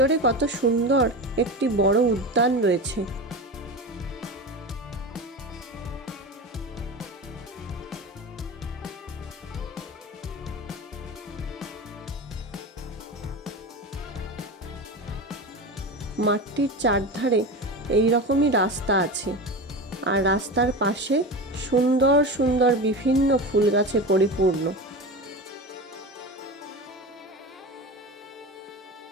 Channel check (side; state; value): both; normal; correlation 0.26